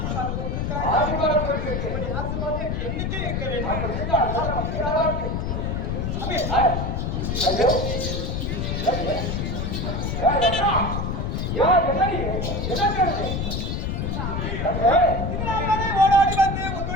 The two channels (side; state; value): left; noise; rumble, 1 dB below the sound